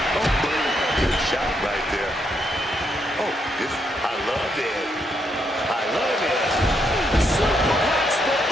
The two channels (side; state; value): both; normal; correlation 0.77